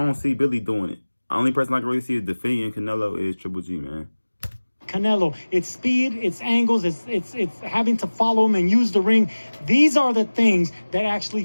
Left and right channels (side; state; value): both; inverted; correlation -1.00